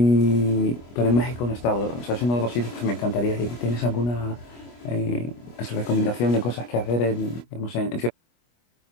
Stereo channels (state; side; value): late; right; 25 ms